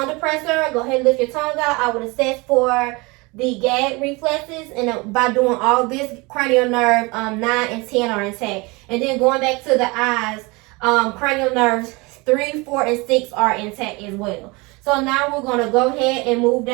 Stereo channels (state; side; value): quieter; left; 25.8 dB